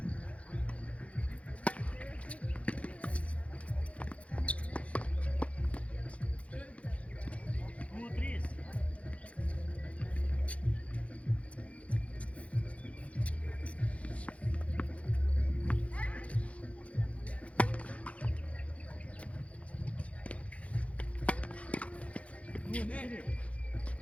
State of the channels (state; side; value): late; right; 0.064 ms